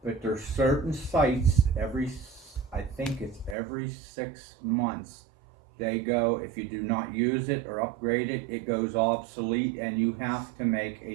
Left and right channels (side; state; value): left; drops out; at 3.6 s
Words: But there's certain sites, I think it's every 6 months, they go, if you do not use it or upgrade it, it goes obsolete and you have to make